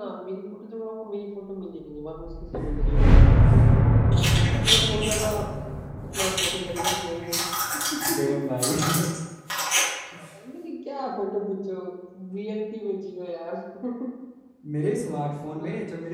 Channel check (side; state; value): both; identical; correlation 1.00